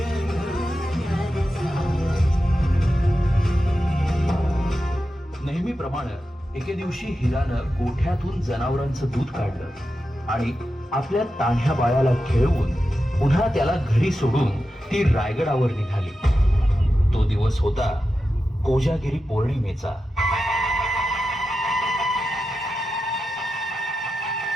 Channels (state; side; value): normal; both; correlation 0.91